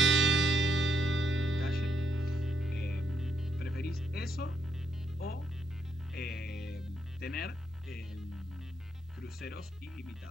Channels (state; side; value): normal; both; correlation 0.77